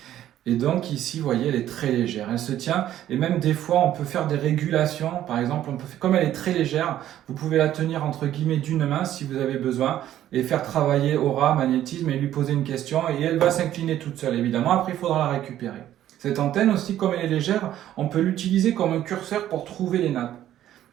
Et donc ici, vous voyez, elle est très légère, elle se tient, et même des fois, on peut faire des régulations. Par exemple, comme elle est très légère, vous pouvez la tenir entre guillemets d'une main si vous avez besoin, et faire travailler aura, magnétisme, et lui poser une question, et elle va s'incliner toute seule, évidemment. Après, il faudra la récupérer. Cette antenne aussi, comme elle est légère, on peut l'utiliser comme un curseur pour trouver les nappes.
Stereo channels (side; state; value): left; quieter; 12.2 dB